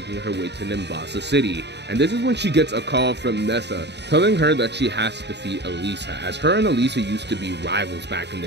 her way to Nimbasa City. And this is when she gets a call from Nessa, telling her that she has to defeat Elisa, as her and Elisa used to be rivals back in the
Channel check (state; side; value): late; left; 0.50 ms